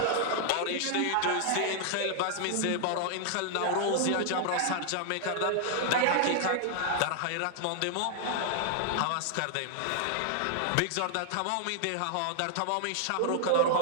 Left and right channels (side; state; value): both; different; correlation 0.00